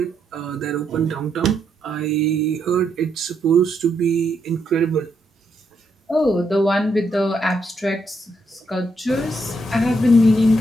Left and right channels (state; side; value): normal; both; correlation 0.77